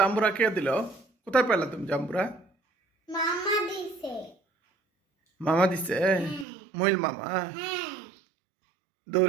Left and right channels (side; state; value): left; drops out; at 6.5 s